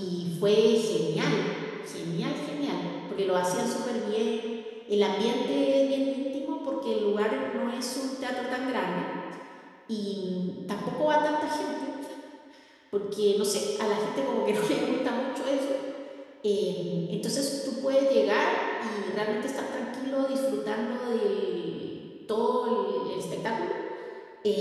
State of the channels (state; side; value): identical; both; correlation 1.00